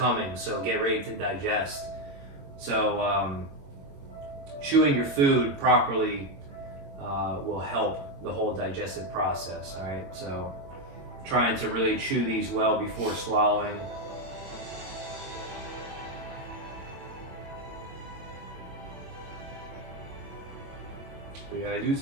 so get ready to digest. So chewing your food properly will help the whole digestive process. All right, so trying to really chew these well before swallowing. But yeah, they do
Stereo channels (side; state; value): left; late; 22 ms